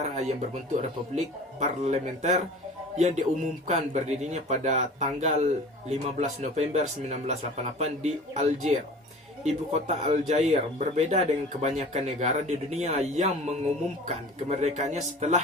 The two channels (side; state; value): both; normal; correlation 0.41